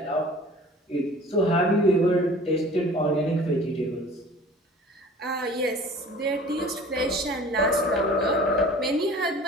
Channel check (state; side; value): normal; both; correlation 0.46